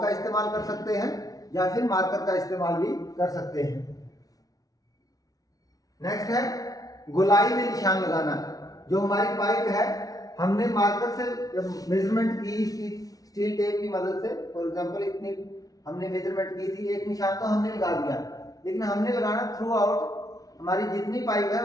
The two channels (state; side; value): late; right; 0.18 ms